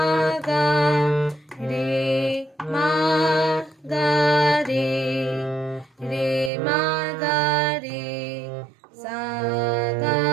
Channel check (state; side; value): drops out; left; at 6.5 s